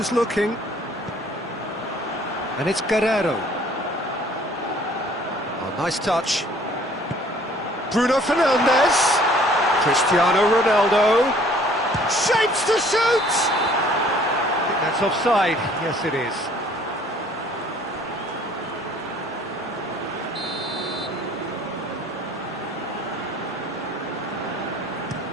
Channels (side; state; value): both; normal; correlation 0.56